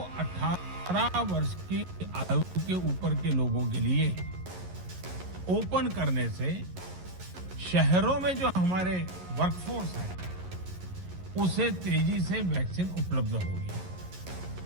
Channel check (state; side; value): late; left; 11 ms